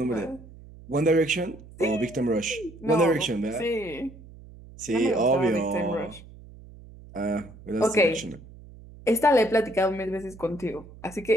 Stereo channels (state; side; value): noise; right; hum, 19 dB below the sound